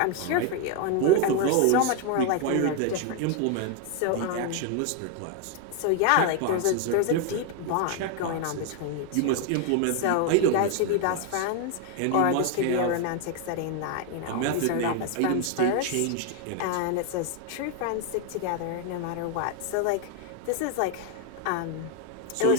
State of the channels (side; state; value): both; different; correlation 0.01